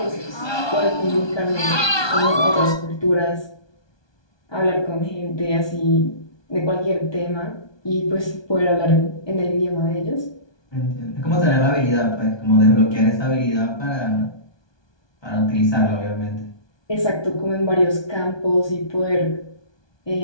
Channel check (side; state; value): right; late; 1.2 ms